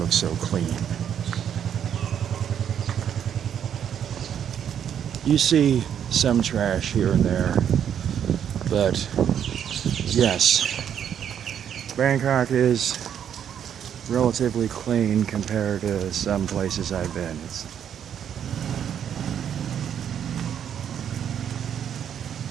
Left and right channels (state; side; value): quieter; left; 9.0 dB